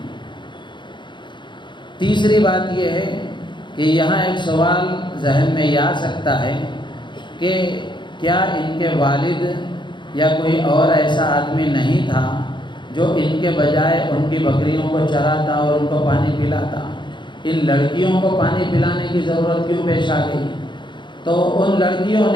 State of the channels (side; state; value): right; late; 0.23 ms